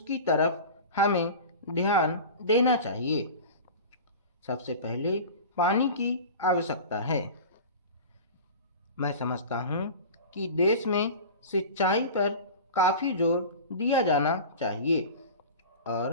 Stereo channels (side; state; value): both; inverted; correlation -0.34